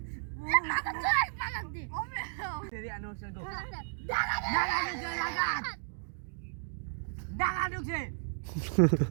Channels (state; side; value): silent; left; digital silence